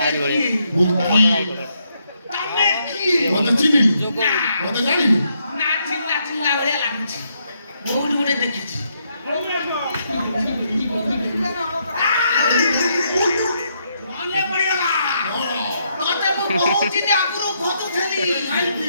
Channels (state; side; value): inverted; both; correlation -0.76